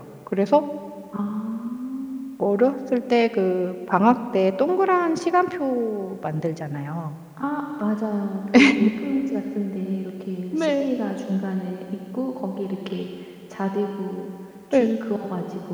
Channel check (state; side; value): identical; both; correlation 1.00